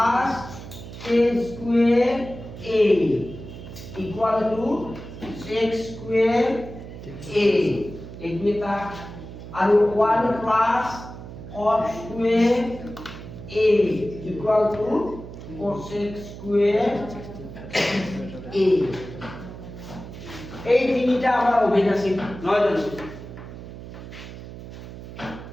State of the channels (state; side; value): noise; right; hum, 13 dB below the sound